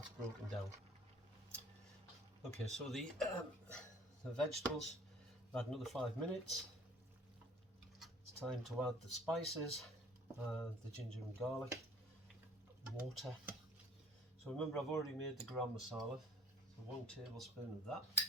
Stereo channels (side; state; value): both; normal; correlation 0.49